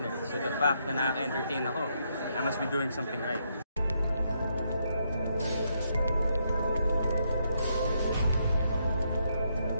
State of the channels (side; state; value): both; inverted; correlation -0.77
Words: So the fact na nakaka-entertain ako, I must be doing something right.